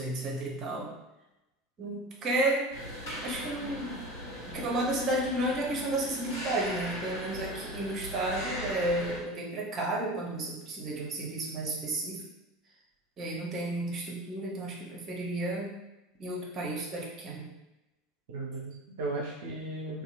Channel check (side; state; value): both; normal; correlation 0.32